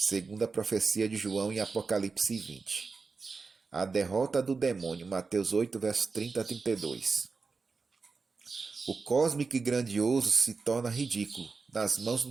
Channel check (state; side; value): quieter; left; 4.5 dB